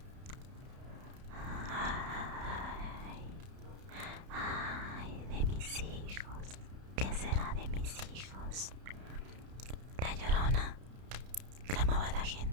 Ay, ay, de mis hijos, ¿qué será de mis hijos? La Llorona, clamaba la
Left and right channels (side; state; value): left; late; 31 ms